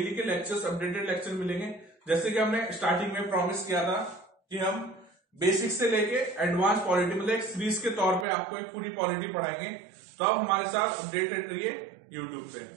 के लेक्चर्स, अपडेटेड लेक्चर मिलेंगे। जैसे कि हमने स्टार्टिंग में प्रॉमिस किया था कि हम बेसिक से लेके एडवांस पॉलिटी, मतलब एक सीरीज के तौर पे आपको एक पूरी पॉलिटी पढ़ाएंगे। तो आप हमारे साथ अपडेटेड रहिए यूट्यूब पे।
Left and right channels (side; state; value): left; drops out; at 8.2 s